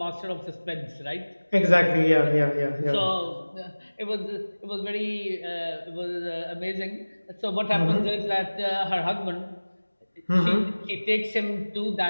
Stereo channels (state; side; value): inverted; both; correlation -1.00